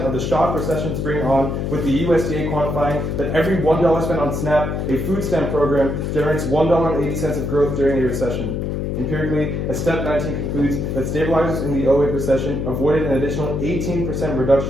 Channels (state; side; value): noise; left; hum, 2 dB below the sound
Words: of the shock recessions bring on, with the USDA quantifying that every $1 spent on SNAP, a food stamp program, generates $1.80 of growth during a recession. Empirically, a Step 19 concludes that stabilizers in the 2008 recession avoided an additional 18%